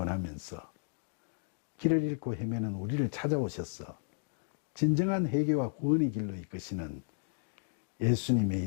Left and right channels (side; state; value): right; silent; digital silence